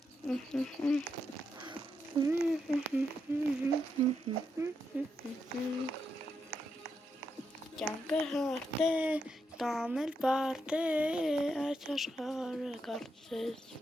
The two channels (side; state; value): both; normal; correlation 0.82